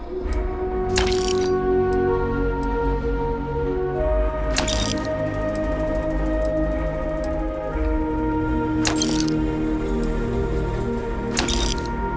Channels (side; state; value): both; identical; correlation 1.00